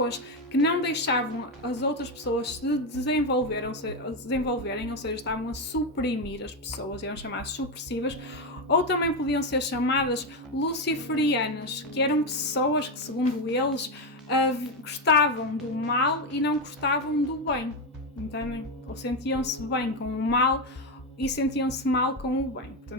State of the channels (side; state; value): both; normal; correlation 0.09